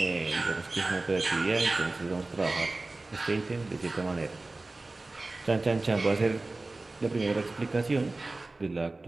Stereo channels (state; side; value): quieter; left; 3.2 dB